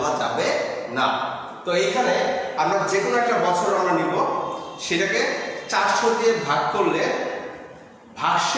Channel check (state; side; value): identical; both; correlation 1.00